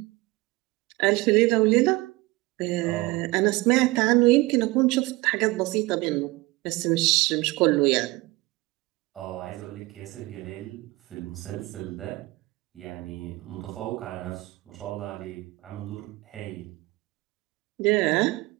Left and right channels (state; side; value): quieter; left; 21.7 dB